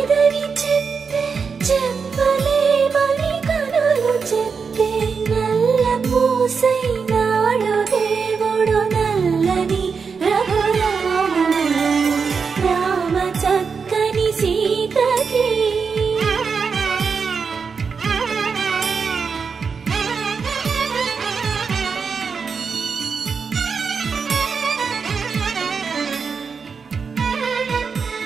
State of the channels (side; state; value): left; quieter; 5.6 dB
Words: చెప్పే చెప్పలేమని కనులు చెప్పే నల్ల పూసైనాడు దేవుడు నల్లని రఘురాముడు రామ చక్కని సీతకి